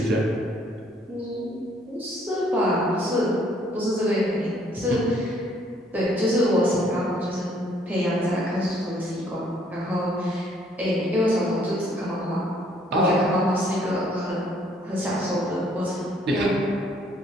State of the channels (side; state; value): both; normal; correlation 0.64